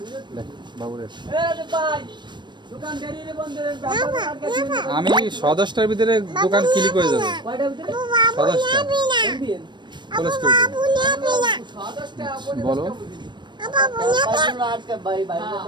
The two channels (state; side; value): late; left; 0.22 ms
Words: দেখ বাবু দেখ। ভাই দোকান দেরি বন্ধ করেন, ব্যাপার আর কাছে আমি 10:10টার ভিতরে দোকান ক্লিক হয়ে যাবে। কয়টার ভিতরে 10:10টা দিন ক্লোজ করে দেব। সদস্যটা আপনি বলো ভাই ভাই